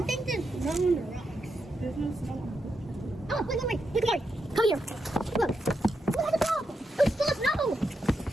think there's snow on the rocks. There's no snow. Oh, look at me. Look at me. Come here. Look. Look at the top. It's full of snow.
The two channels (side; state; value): both; normal; correlation 0.84